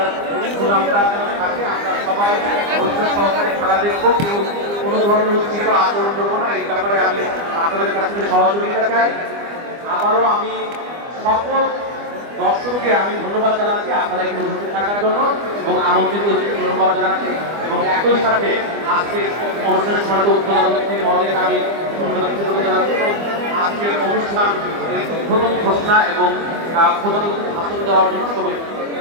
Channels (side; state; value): left; late; 25 ms